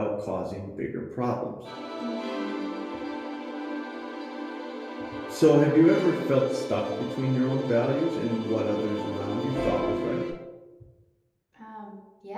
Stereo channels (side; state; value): both; identical; correlation 1.00